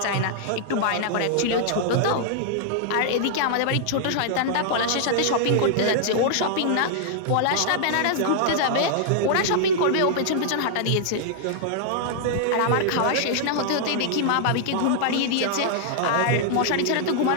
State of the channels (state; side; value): different; both; correlation -0.01